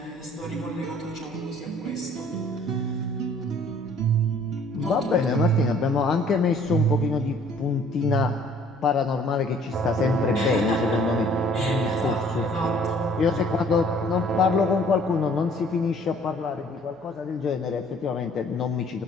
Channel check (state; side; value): noise; right; hum, 29 dB below the sound